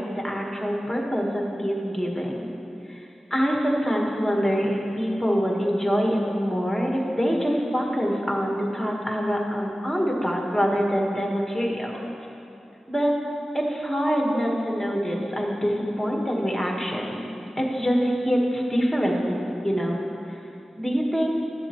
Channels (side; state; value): both; normal; correlation 0.96